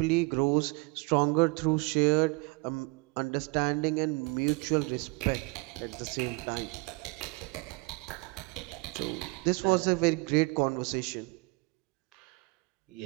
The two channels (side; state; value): left; quieter; 28.3 dB